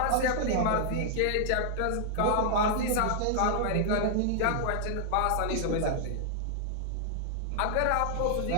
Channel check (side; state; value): both; different; correlation -0.01